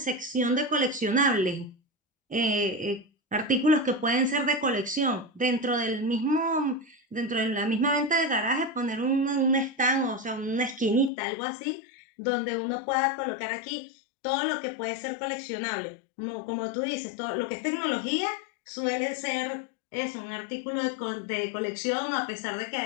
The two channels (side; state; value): right; drops out; at 11.1 s